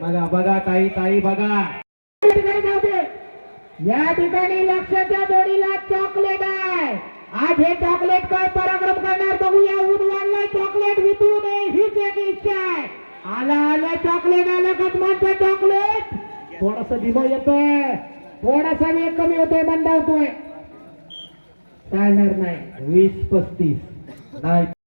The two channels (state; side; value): inverted; both; correlation -1.00